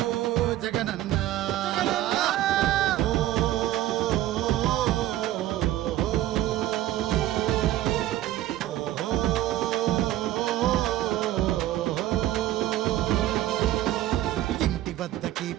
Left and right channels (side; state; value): left; quieter; 14.1 dB